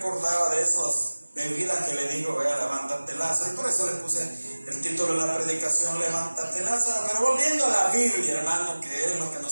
de esas bebidas que le digo, vea, levántate, Lázaro, y por eso le puse el título de la predicación, Levántate, Lázaro. Pero volviendo a la Biblia, hermano, que es lo que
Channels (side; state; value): both; inverted; correlation -1.00